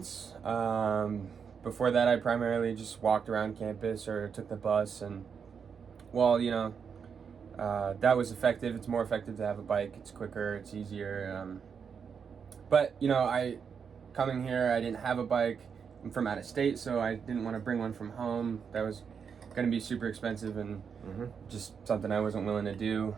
Before that, I primarily just walked around campus or took the bus, and that was effective. It's more effective to have a bike. It's quicker, it's easier. But coming here, I didn't have a bike. I'm from out of state, so I didn't want to bring one from home. That was going to be super expensive and just something I wasn't willing to do.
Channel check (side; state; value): left; quieter; 6.6 dB